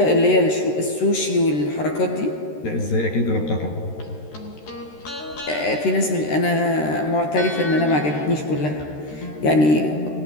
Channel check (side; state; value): right; late; 13 ms